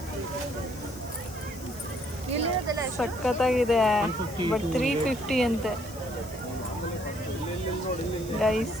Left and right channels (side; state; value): left; noise; hiss, 18 dB below the sound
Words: ಸಖತ್ತಾಗಿದೆ. ಬಟ್ 350 ಅಂತೆ ಗೈಸ್.